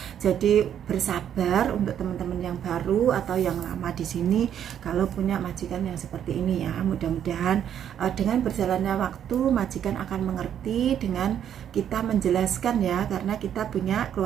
Jadi bersabar untuk teman-teman yang baru atau yang lama di sini kalau punya majikan yang seperti ini ya. Mudah-mudahan dengan berjalannya waktu majikan akan mengerti dengan kita menjelaskan ya, karena kita punya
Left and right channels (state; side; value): quieter; left; 9.6 dB